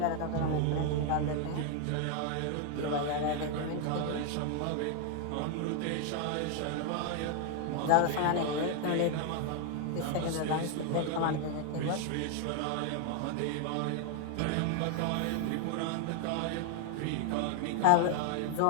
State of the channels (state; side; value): different; both; correlation 0.00